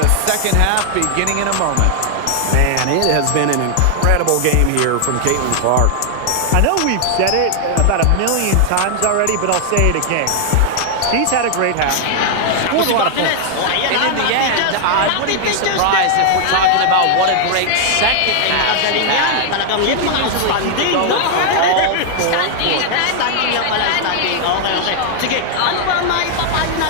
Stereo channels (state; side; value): different; both; correlation 0.00